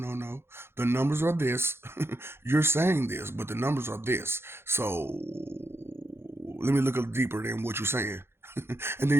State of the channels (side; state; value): left; late; 0.12 ms